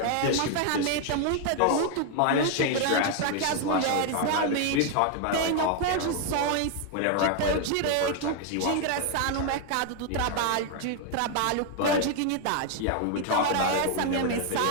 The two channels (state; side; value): different; both; correlation 0.00